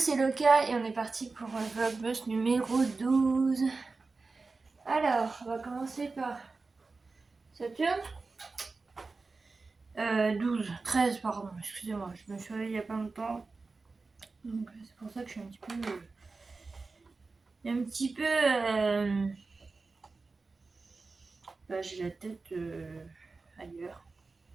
Loka et on est parti pour un vlogmas numéro 12. Alors, on va commencer par Saturne. 13, pardon, excusez-moi, je me suis réveillée il n'y a pas longtemps. Donc c'est pour ça que je suis un petit peu j'ai la tête ailleurs.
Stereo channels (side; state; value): left; quieter; 4.0 dB